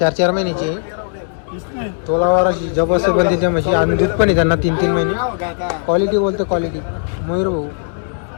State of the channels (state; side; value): silent; right; digital silence